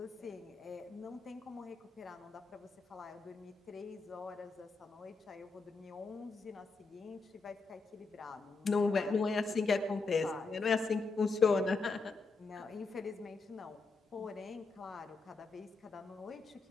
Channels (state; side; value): quieter; right; 4.2 dB